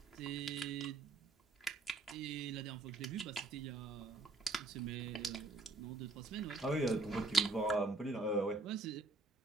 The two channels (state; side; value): quieter; left; 3.2 dB